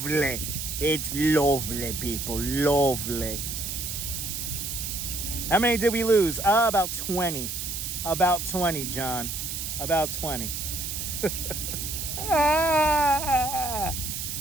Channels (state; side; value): noise; right; hiss, 4 dB below the sound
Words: It's lovely, people. Lovely. How many did we lose? About 20. About 20, John. About 20.